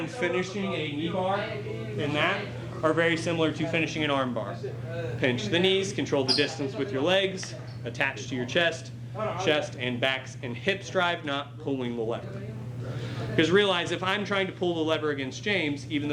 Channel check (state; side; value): identical; both; correlation 1.00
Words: finishing a knee bar and that are very similar to finishing an arm bar. Pinch the knees, control the distance with your legs, attach to your chest and backs and hips drive, not pulling the lever. Because realize if I'm trying to pull the lever against James, even